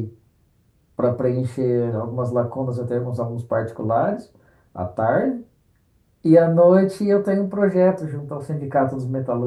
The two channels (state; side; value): identical; both; correlation 1.00